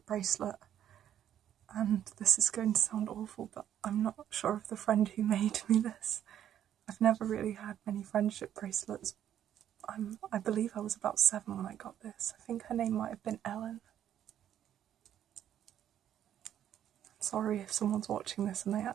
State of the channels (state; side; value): quieter; left; 10.5 dB